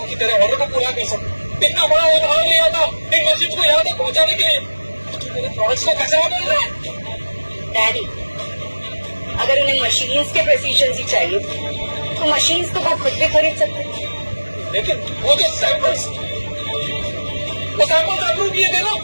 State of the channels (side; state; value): both; inverted; correlation -1.00